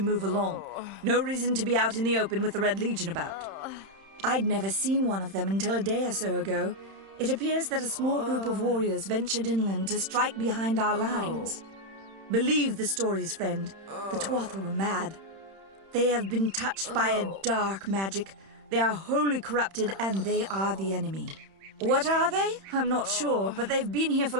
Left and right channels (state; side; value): late; left; 31 ms